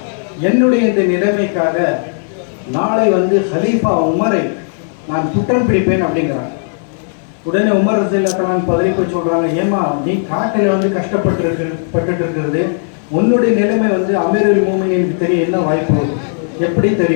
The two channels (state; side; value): silent; right; digital silence